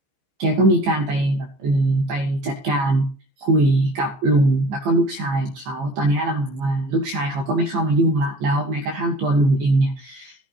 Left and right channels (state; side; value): late; left; 15 ms